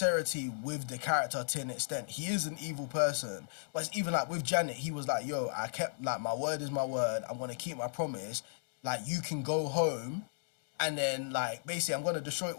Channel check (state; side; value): silent; right; digital silence